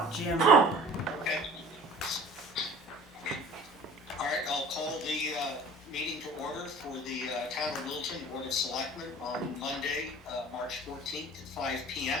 Jim. Okay. All right, I'll call the meeting to order for the Town of Littleton Board of Selectmen on Monday, March 14th at 5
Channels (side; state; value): both; normal; correlation 0.45